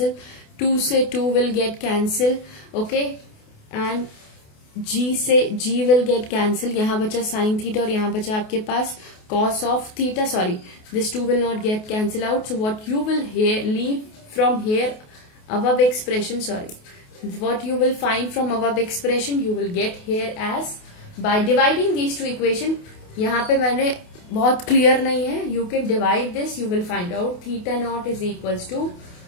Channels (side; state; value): right; late; 28 ms